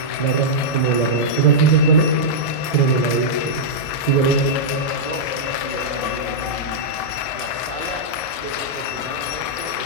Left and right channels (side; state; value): right; late; 1.6 ms